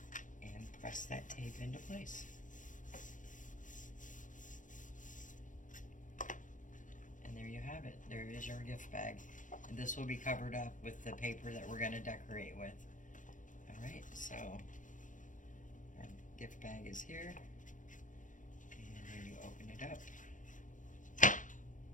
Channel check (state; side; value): late; right; 0.37 ms